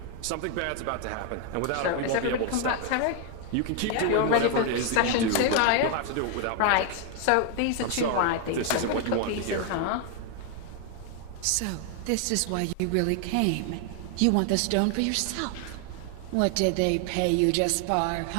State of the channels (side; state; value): both; different; correlation 0.00